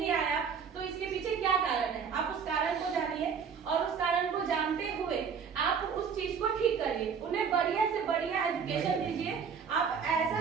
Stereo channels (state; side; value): quieter; left; 6.6 dB